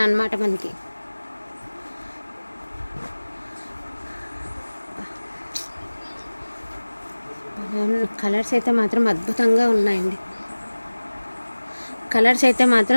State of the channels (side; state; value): both; inverted; correlation -1.00